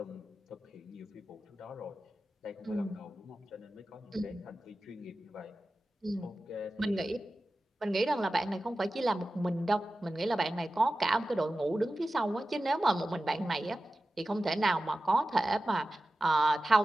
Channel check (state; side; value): normal; both; correlation 0.94